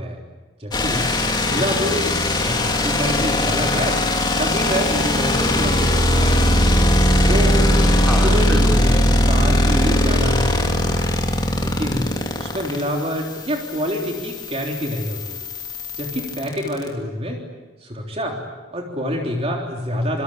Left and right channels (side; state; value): both; normal; correlation 0.63